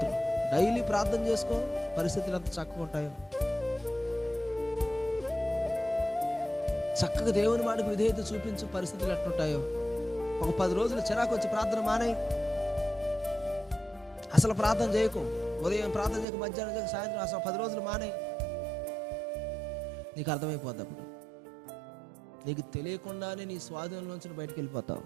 డైలీ ప్రార్థన చేసుకో, పరిస్థితులు ఎంత చక్కగా ఉంటాయో. చక్కగా దేవుని మాటకు విధేయత చూపించు, పరిస్థితులు ఎట్లుంటాయో. ఒక 10 రోజులు చిరాకు వచ్చి ప్రార్థన మానేయి, అసలు ప్రార్థన చేయకు. ఉదయం ప్రార్థన చేయక, మధ్యాహ్నం చేయక, సాయంత్రం, అసలు 10 రోజులు మానేయి. నీకు అర్థమైపోద్ది. అప్పుడు నీకు తెలియకుండానే నీ స్వాధీనంలోంచి బయటకు వెళ్ళిపోతావు.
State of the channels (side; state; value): left; drops out; at 16.2 s